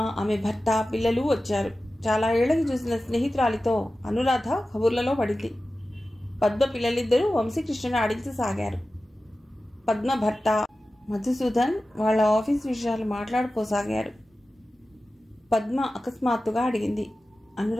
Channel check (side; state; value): both; normal; correlation 0.95